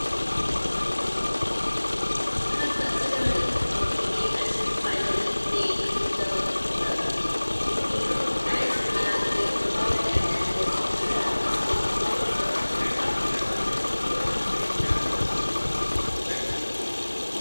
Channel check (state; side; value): inverted; both; correlation -1.00